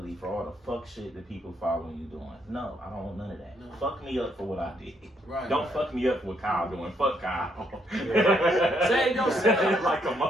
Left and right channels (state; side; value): normal; both; correlation 0.73